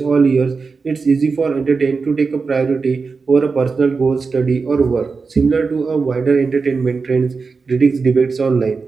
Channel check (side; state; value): left; quieter; 4.7 dB